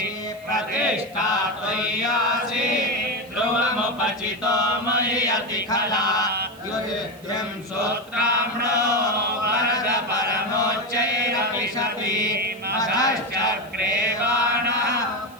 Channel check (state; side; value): noise; right; hiss, 25 dB below the sound